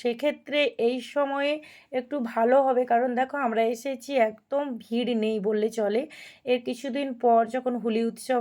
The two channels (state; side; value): identical; both; correlation 1.00